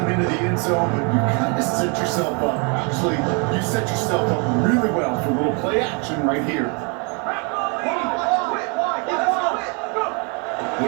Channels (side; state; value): left; quieter; 34.5 dB